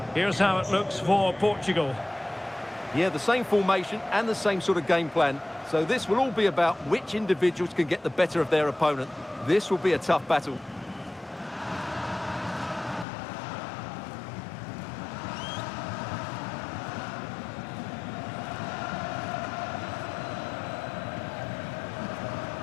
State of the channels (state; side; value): drops out; right; at 13.1 s